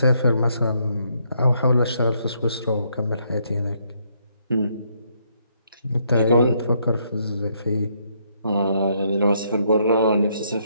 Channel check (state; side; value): inverted; both; correlation -0.73